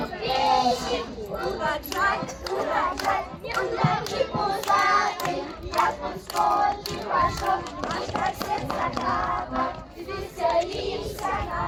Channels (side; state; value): both; identical; correlation 1.00